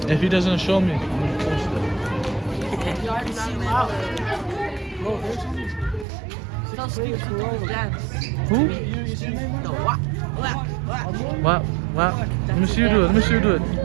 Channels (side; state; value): left; drops out; at 6.1 s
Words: If he doesn't show me, I'm gonna post it. You already seen it. Bro, there's something. So Steve dance. Who? No, what? Wow. Let me see you do it.